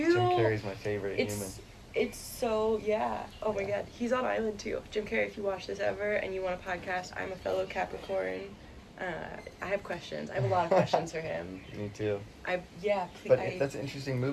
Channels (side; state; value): both; identical; correlation 1.00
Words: Jim Carrey's my favorite human. It's so, oh my Yeah. God, he's on Island too. Jim Carrey, if you watch this ever and you want a podcast, I'm a fellow Capricorn. I have questions. I have a lot of questions for him. Me too. Please. But that's an interesting